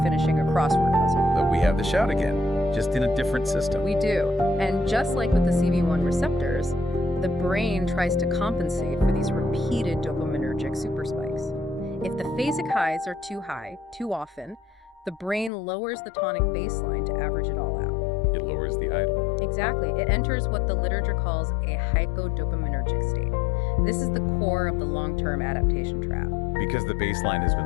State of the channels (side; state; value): right; drops out; at 15.5 s